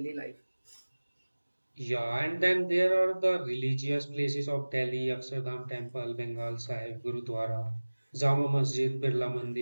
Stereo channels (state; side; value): inverted; both; correlation -1.00